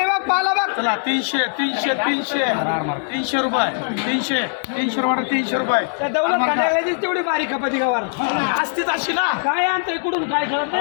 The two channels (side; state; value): right; silent; 65 dB below the other